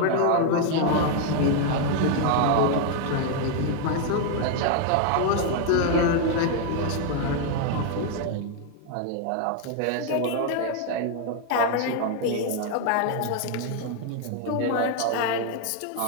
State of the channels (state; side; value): different; both; correlation 0.00